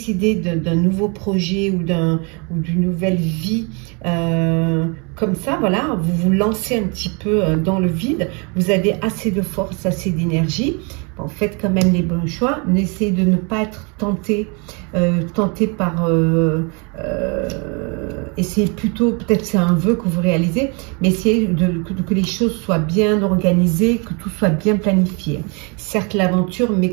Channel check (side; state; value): left; quieter; 32.8 dB